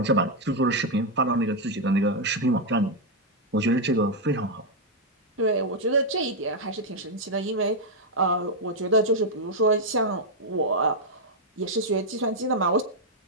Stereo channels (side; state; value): both; normal; correlation -0.01